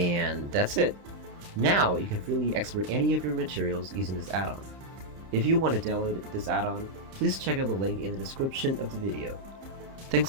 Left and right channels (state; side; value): late; left; 30 ms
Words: that's it! Now you can freely export any of your materials using this add-on. If you want to download this add-on, please check out the link in the description of the video. Thanks